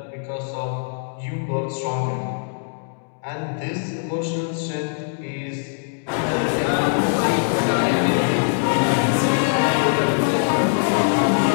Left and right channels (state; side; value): silent; right; digital silence